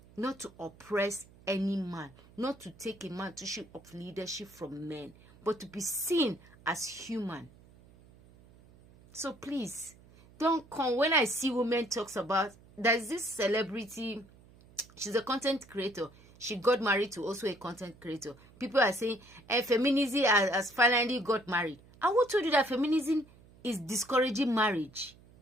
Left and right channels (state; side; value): noise; right; hum, 25 dB below the sound